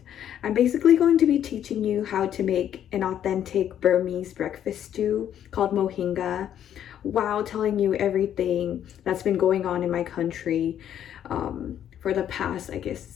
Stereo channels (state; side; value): quieter; right; 10.2 dB